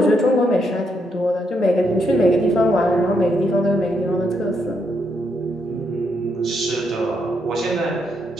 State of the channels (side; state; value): both; normal; correlation 0.78